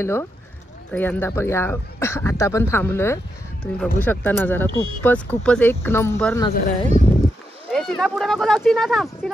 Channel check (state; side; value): normal; both; correlation 0.83